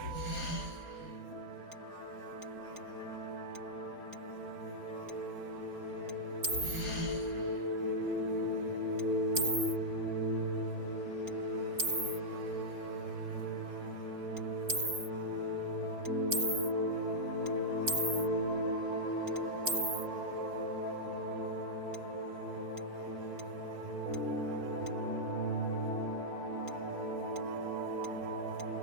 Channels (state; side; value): late; left; 4.3 ms